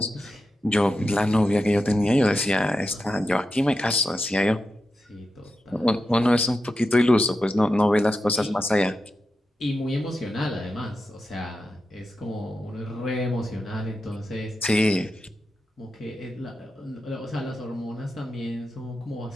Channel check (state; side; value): normal; both; correlation 0.89